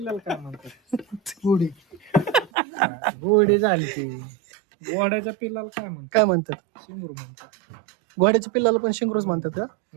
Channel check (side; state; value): left; drops out; at 2.5 s